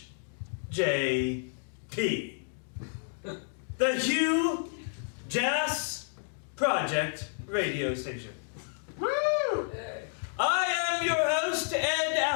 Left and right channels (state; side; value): silent; right; digital silence